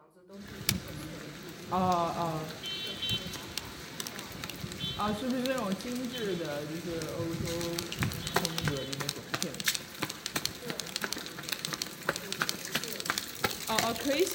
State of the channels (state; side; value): identical; both; correlation 1.00